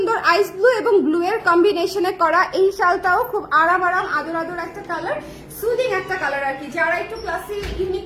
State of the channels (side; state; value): both; identical; correlation 1.00